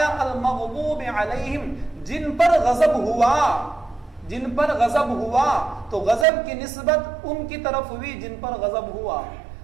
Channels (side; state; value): left; drops out; at 6.2 s